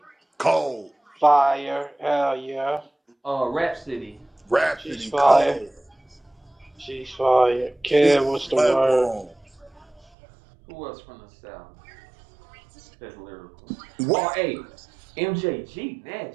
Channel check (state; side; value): drops out; left; at 10.1 s